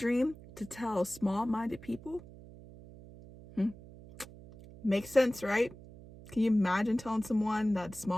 to tell small-minded people? Makes sense, right? Can you imagine telling someone that's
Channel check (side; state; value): right; noise; hum, 18 dB below the sound